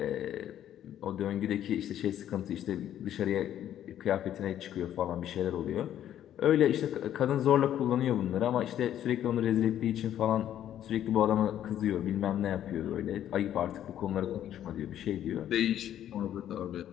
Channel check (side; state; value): right; quieter; 11.1 dB